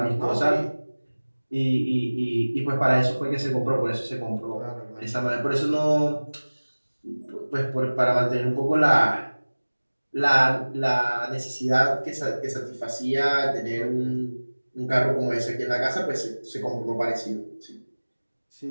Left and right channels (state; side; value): inverted; both; correlation -1.00